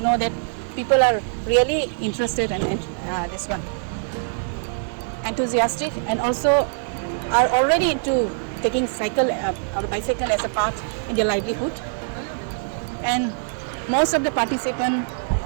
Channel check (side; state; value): left; silent; digital silence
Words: know that people are really interested in this one, enthusiastic, and also are already into taking cycle or bicycle as a part in their livelihood. And most of the participants